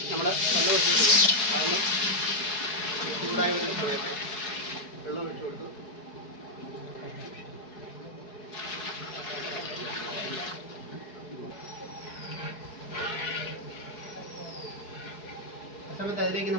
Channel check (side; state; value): right; late; 4.7 ms